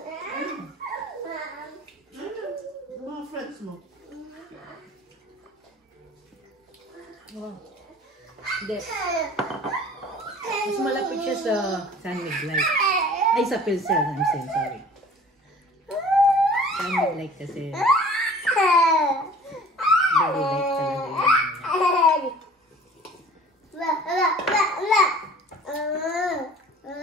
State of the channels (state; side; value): normal; both; correlation 0.47